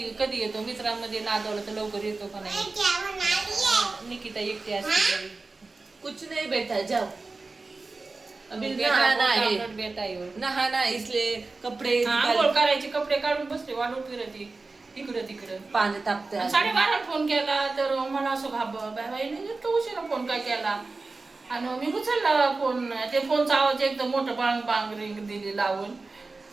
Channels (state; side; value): quieter; left; 3.7 dB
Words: कधी येतो. मित्रांमध्ये नादवलं तर लवकर येतो का नाही. निकिता एकटी असते. कुछ नहीं बेटा जाओ, अभी नहाना नहाना इसलिए कपडे आंघोळ करायचे, कपडे काढून बसले वाढून फिरती इकडं तिकडं. पाणी तापते. 12:30 फोन केला तर मला असं बाई इतका उशिरा फोन काय केला. आणि मी उचलला फोन. ते फोनचा आवाज एकदम मोठं बांग बांग रिंग दिली लावून.